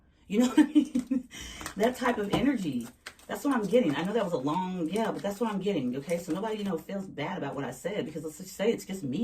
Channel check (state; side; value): identical; both; correlation 1.00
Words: You know what I mean? That type of energy. That's what I'm getting. I know that was a long, but that's what I'm getting. Okay, so nobody, feels bad about what I said because let's just say it's just